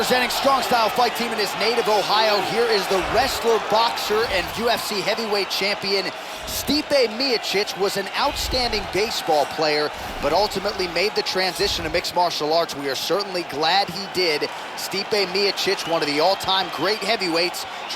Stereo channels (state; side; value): identical; both; correlation 1.00